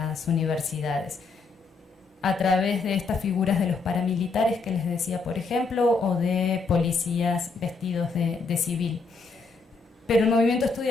universidades, a través de estas figuras de los paramilitares que les decía, por ejemplo, o de policías vestidos de civil. Pero el movimiento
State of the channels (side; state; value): right; quieter; 4.2 dB